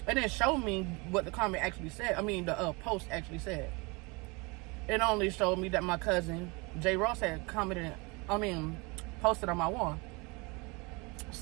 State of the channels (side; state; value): left; quieter; 27.5 dB